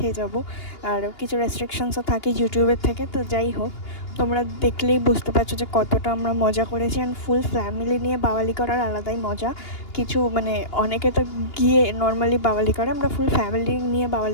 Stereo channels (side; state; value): right; late; 2.8 ms